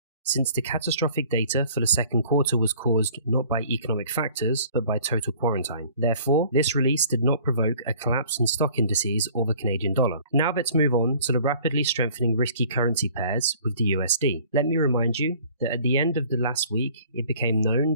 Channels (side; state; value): both; inverted; correlation -0.52